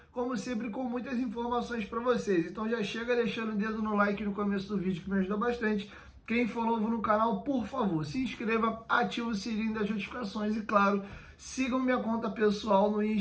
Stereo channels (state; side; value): identical; both; correlation 1.00